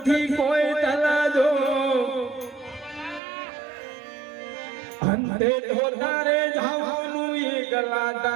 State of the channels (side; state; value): left; drops out; at 3.2 s